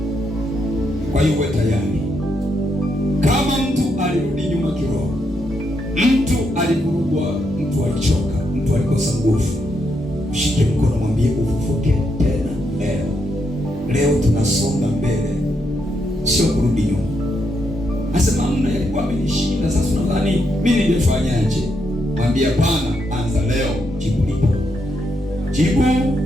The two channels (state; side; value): normal; both; correlation 0.79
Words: Kwa hiyo uwe tayari. Kama mtu alirudi nyuma kiroho, mtu alivurugwa, mtu alichoka, mtu alikosa nguvu, mshike mkono, mwambie ufufuke tena leo. Leo tunasonga mbele, sio kurudi nyuma. Asema mna yalikuwa amenishinda, sasa unadhani mimi ningefanyaje? Mwambie hapana, anza leo, jibu lipo. Jibu